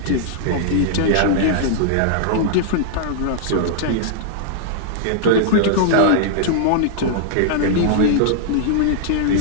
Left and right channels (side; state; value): both; different; correlation -0.01